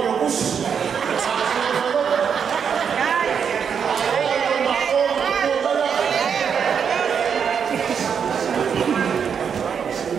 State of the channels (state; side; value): quieter; left; 7.1 dB